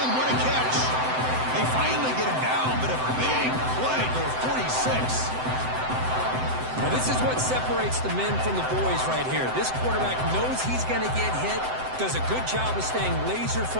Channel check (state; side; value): late; left; 7.8 ms